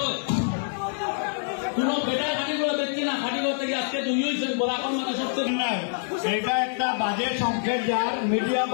হয় কোন বেটার খাটিগুলো দেখছি না, খাটিগুলো থেকে আজকে দুই হয়েছে বলা এখন মানে সবচেয়ে নাই। এটা একটা বাজে সংকেত যার মিডিয়া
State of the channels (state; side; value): silent; right; 61 dB below the other